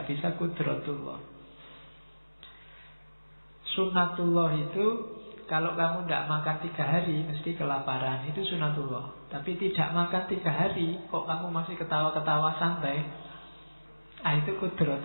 bisa qudratullah. Sunnatullah itu kalau kamu tidak makan 3 hari mesti kelaparan, itu sunnatullah. Tapi tidak makan 3 hari kok kamu masih ketawa-ketawa santai, itu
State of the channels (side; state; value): both; inverted; correlation -1.00